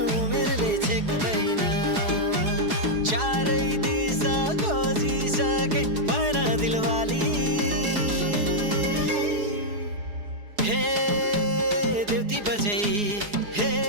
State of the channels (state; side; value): late; left; 4.8 ms